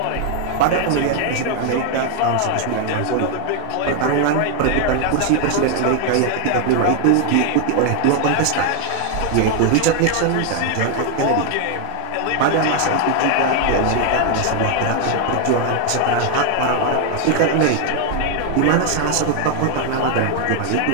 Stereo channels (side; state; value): both; different; correlation 0.00